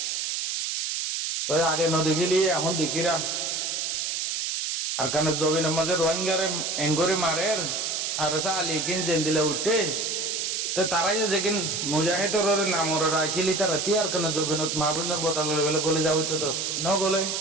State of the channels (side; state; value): right; noise; hiss, 1 dB below the sound